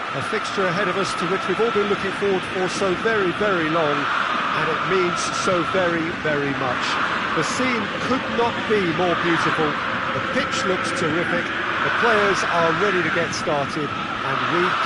A fixture ahead of us to which we've all been looking forward for so very, very long, and it means so very, very much. The scene could not be more beautiful. The pitch looks terrific. The players are ready to get started, And we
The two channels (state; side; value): identical; both; correlation 1.00